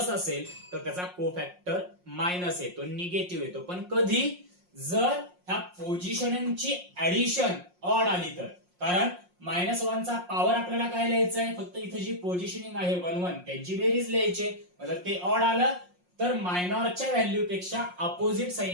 असेल तर त्याचा कोफॅक्टर मायनस येतो, निगेटिव्ह येतो. पण कधी जर ह्या पोझिशनिंगची ऍडिशन ऑड आली तर, कारण -1 चा पॉवर आपल्याला काय लिहायचंय, फक्त इथे जी पोझिशनिंग आहे 1 1 त्यांची बेरीज लिहायची. जर ते ऑड आलं तर मायनॉरच्या व्हॅल्यू पेक्षा अपोजिट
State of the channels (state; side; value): late; left; 5.6 ms